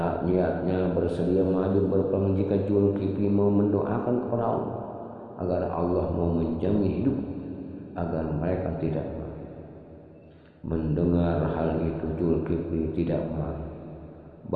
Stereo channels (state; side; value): identical; both; correlation 1.00